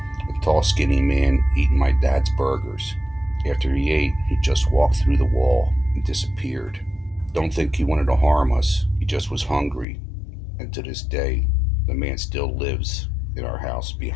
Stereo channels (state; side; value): drops out; right; at 9.9 s